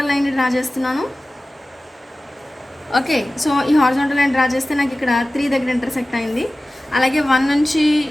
లైన్ డ్రా చేస్తున్నాను. ఓకే, సో ఈ హారిజాంటల్ లైన్ డ్రా చేస్తే నాకు ఇక్కడ 3 దగ్గర ఇంటర్సెక్ట్ అయింది. అలాగే 1 నుంచి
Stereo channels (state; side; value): normal; both; correlation 0.96